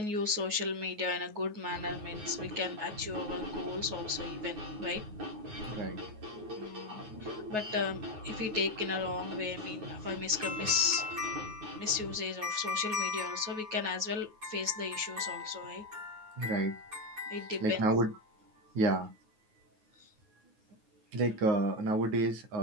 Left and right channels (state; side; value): late; left; 9.4 ms